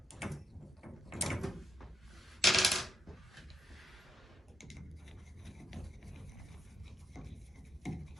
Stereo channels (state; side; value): normal; both; correlation 0.80